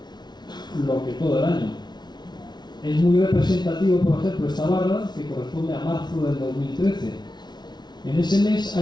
lo que todo el año. Es muy representativo, por ejemplo, esta barra, que corresponde a marzo del 2013. En ese mes ha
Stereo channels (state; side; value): late; right; 0.20 ms